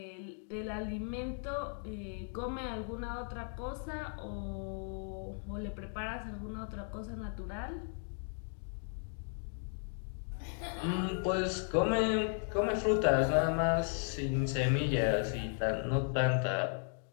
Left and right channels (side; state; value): right; silent; 54 dB below the other